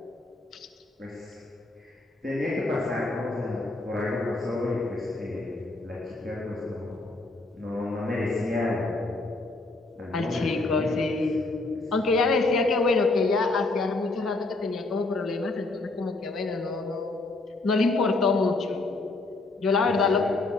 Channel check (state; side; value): quieter; right; 3.2 dB